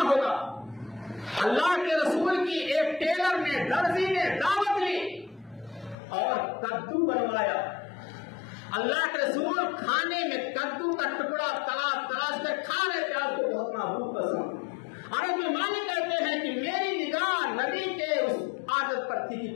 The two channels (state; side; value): drops out; right; at 6.0 s